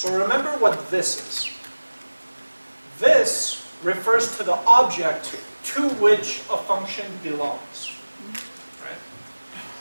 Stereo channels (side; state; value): both; inverted; correlation -1.00